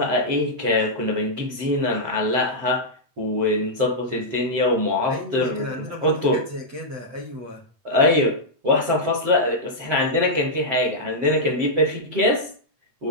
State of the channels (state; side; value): late; left; 7.7 ms